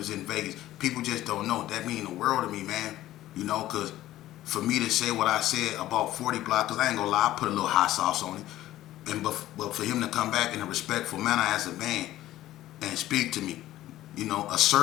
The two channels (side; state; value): right; quieter; 14.6 dB